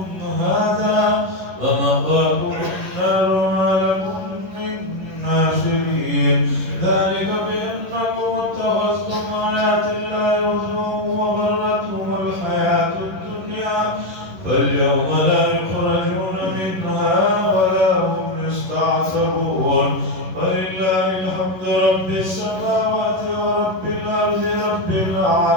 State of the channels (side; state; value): left; late; 11 ms